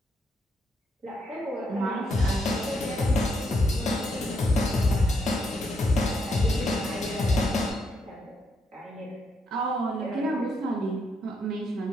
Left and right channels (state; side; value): normal; both; correlation 0.77